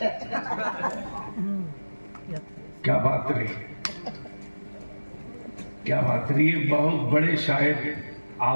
क्या बात रही। क्या बात है, ये बहुत बड़े शायर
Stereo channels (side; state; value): both; inverted; correlation -1.00